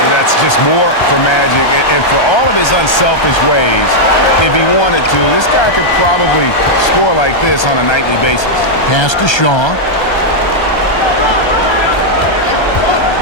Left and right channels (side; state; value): right; late; 1.3 ms